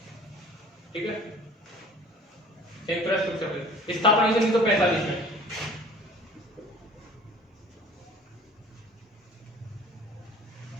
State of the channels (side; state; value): both; normal; correlation 0.47